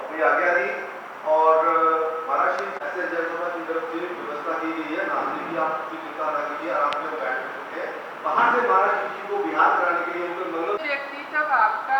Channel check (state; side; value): identical; both; correlation 1.00